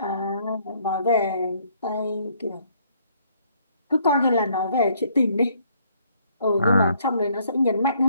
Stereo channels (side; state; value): both; inverted; correlation -0.66